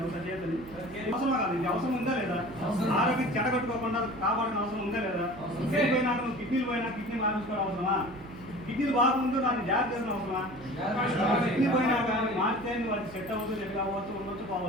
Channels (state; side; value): noise; right; hum, 18 dB below the sound